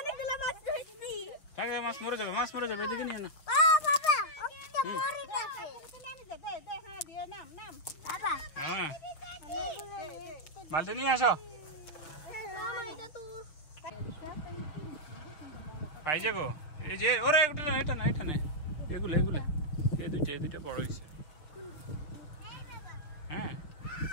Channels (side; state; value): right; late; 6.4 ms